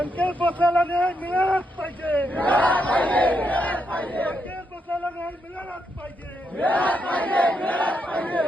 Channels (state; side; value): normal; both; correlation 0.80